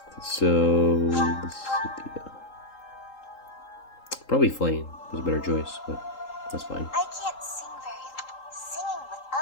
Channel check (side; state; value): right; late; 3.8 ms